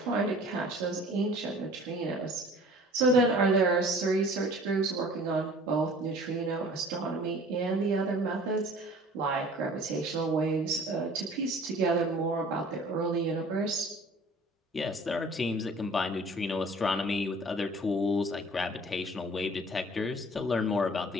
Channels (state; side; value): normal; both; correlation 0.49